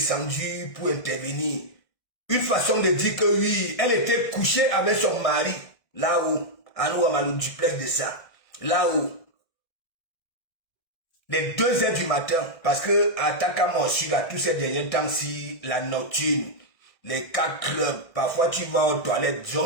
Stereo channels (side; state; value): right; late; 1.6 ms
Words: pour intervenir. une façon de dire que oui, elle était couchée avec son mari, là-haut, à nous, à le duplex de ça, là-haut. Les 2 heures du matin, parce que à Takamosu, là, tous ces derniers temps-ci, la nocturne, les 4 clubs, parfois tu vas aux toilettes,